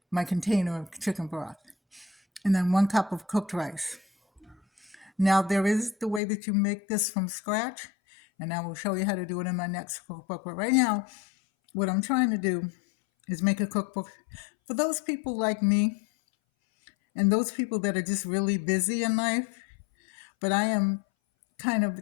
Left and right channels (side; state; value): right; drops out; at 6.2 s